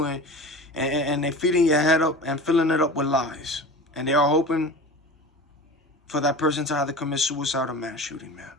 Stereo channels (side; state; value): both; normal; correlation 0.34